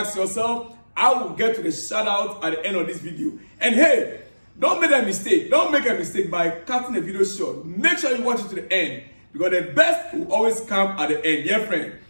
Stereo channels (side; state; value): both; inverted; correlation -1.00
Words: yourself. I will get to the shout out at the end of this video. And hey, don't make a mistake. Don't make a mistake by cutting the video short. Make sure you watch it to the end because the best will always come at the end, dear friend.